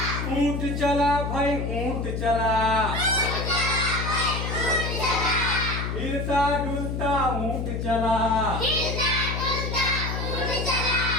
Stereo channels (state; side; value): noise; left; hum, 3 dB below the sound